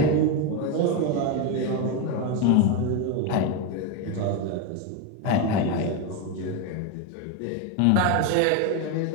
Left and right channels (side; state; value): both; different; correlation 0.03